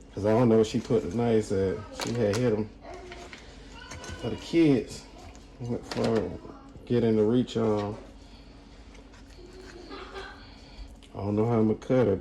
because I don't know where she put the knives at. She had hit them for the kids. For getting the reach on. I don't know how I'm gonna cut it,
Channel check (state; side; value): identical; both; correlation 1.00